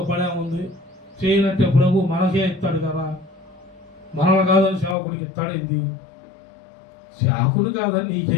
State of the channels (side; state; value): right; drops out; at 5.0 s